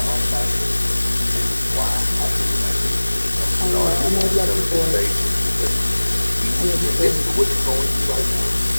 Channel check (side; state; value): both; inverted; correlation -1.00